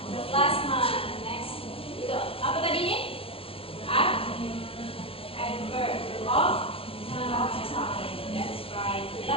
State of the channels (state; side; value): late; right; 0.27 ms